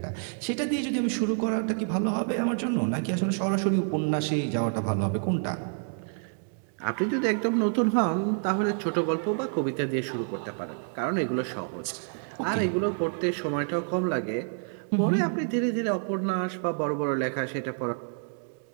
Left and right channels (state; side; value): silent; left; 59 dB below the other